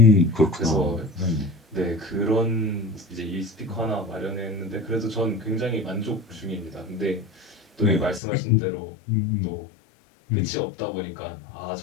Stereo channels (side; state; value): right; drops out; at 8.2 s